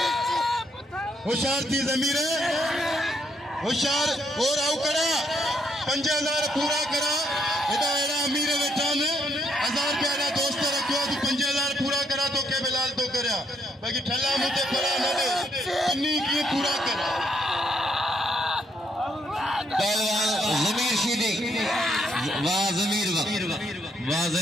होशियार थी जमीर होशियार और आउ करा 5000 पूरा करा एदा एड़ा अमीर वेठा ने 1000 के एड़ा दोस्त रखियो तू 5000 पूरा करा तो के बिलाल तो करया बाकी ठल्ला मुते पड़ा न दे इन्नी की पूरा करा पहलवान जमीर शीदी वाह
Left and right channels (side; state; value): both; normal; correlation 0.73